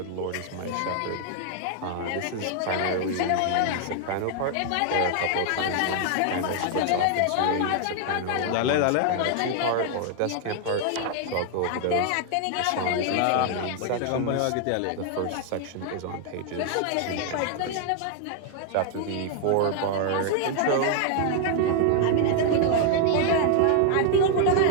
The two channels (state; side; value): different; both; correlation 0.00